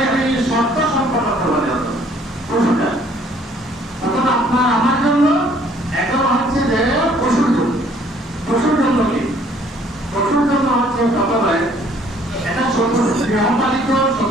শর্ত সম্পন্ন করতে হবে পশুটা। তখন আপনার আমার জন্য এখন হচ্ছে যে পশুর জন্য। পশুর জন্য কি? পশুর জন্য হচ্ছে প্রথমে এটা গৃহপালিত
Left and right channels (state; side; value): normal; both; correlation 0.60